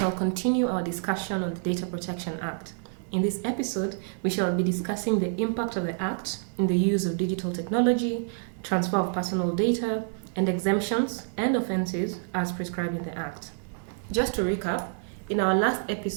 continue our discussion on the Data Protection Act. In this episode, we shall be discussing the impact of the Act in the use of digital technology, transfer of personal data, and exemptions and offences as prescribed in the Act. Just to recap, in our last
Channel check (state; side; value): silent; left; digital silence